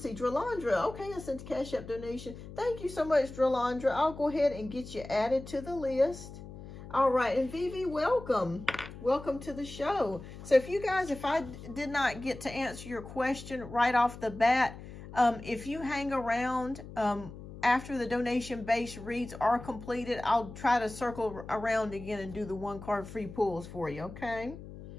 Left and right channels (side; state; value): left; noise; hum, 14 dB below the sound